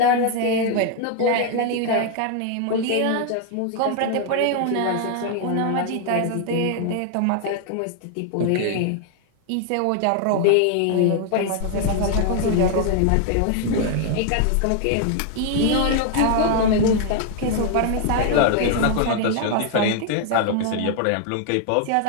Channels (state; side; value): different; both; correlation 0.00